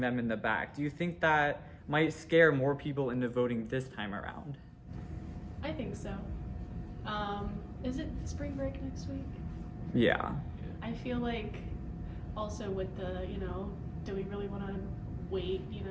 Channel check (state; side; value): identical; both; correlation 1.00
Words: them in the back. Do you think that might scare more people into voting this time around? I think so. Is it spring break next week? Yeah. I feel like also with the, do we really want to wait,